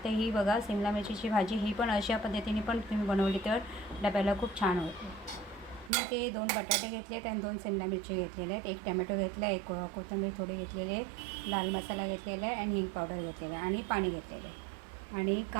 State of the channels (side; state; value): left; drops out; at 5.9 s